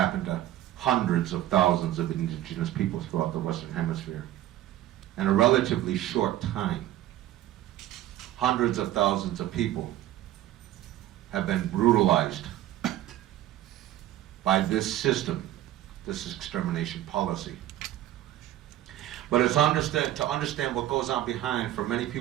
to hundreds of thousands of indigenous peoples throughout the Western Hemisphere in a relatively short time. Hundreds of thousands of people have been brutalized by this system, this extermination policy. But it's to understand what goes on behind, for many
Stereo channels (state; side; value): quieter; left; 13.7 dB